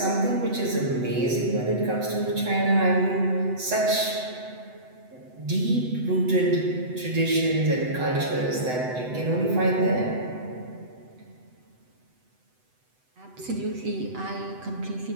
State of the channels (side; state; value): left; late; 8.0 ms